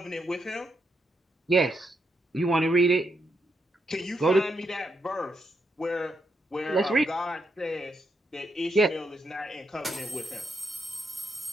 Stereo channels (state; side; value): normal; both; correlation 0.80